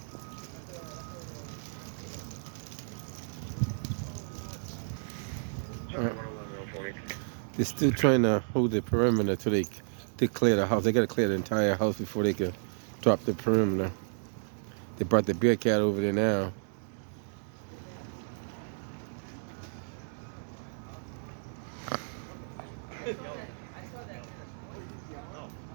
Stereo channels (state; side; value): silent; left; digital silence